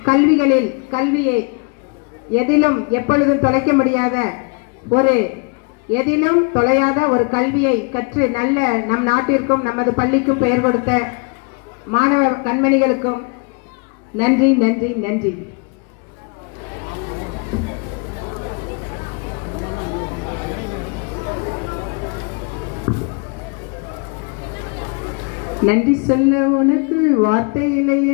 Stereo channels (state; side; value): quieter; right; 32.9 dB